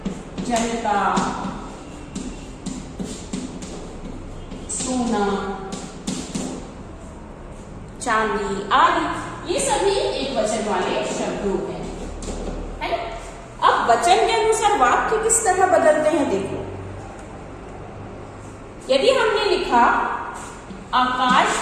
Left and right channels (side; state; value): both; identical; correlation 1.00